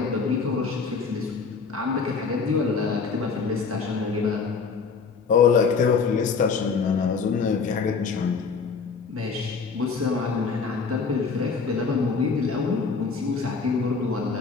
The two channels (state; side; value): quieter; right; 5.1 dB